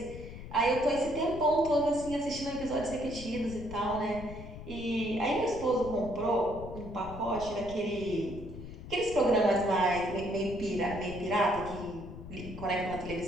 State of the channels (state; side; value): noise; left; rumble, 12 dB below the sound